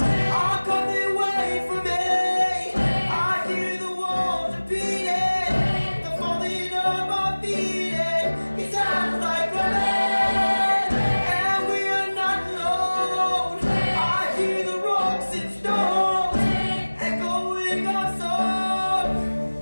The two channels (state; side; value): inverted; both; correlation -1.00